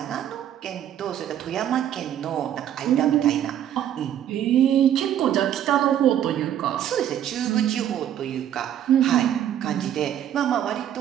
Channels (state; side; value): quieter; left; 10.6 dB